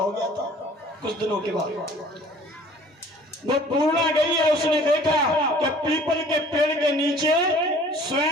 गया था कुछ दिनों के बाद। वो पूर्णा गई है, उसने देखा कि पीपल के पेड़ के नीचे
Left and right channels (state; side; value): normal; both; correlation 0.51